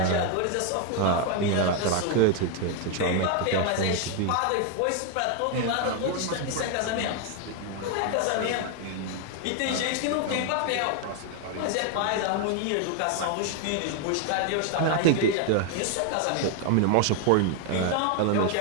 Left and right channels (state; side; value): different; both; correlation 0.01